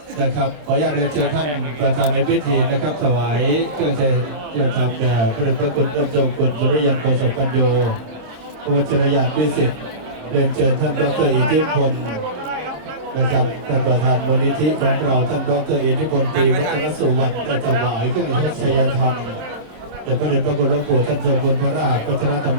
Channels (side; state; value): left; late; 27 ms